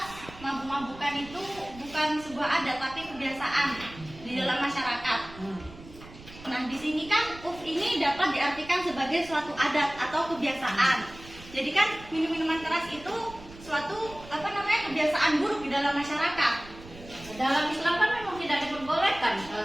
mabuk-mabukan itu bukan sebuah adat tapi kebiasaan di dalam masyarakat. Nah, di sini kan urf ini dapat diartikan sebagai suatu adat atau kebiasaan. Jadi kan minum-minuman keras itu suatu kebiasaan buruk di dalam masyarakat. Dalam Islam kan memang tidak diperbolehkan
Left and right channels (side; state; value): right; noise; rumble, 18 dB below the sound